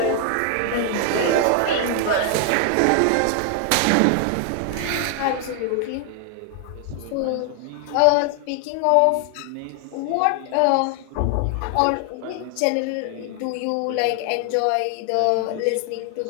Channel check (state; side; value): different; both; correlation 0.00